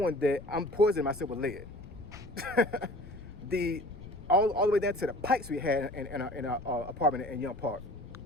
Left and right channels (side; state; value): left; noise; rumble, 16 dB below the sound